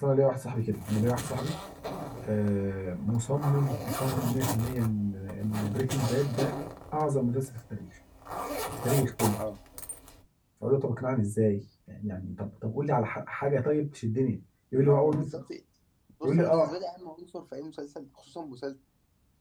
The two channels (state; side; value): identical; both; correlation 1.00